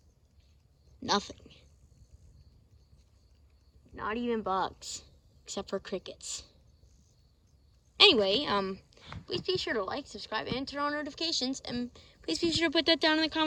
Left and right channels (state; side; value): identical; both; correlation 1.00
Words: nothing. Not even bugs, except for crickets. Anyway, please be sure to like, subscribe, and turn on notifications. And please be sure to put that down in the